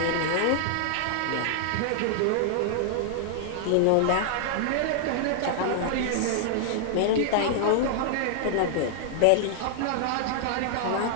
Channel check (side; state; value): both; different; correlation -0.01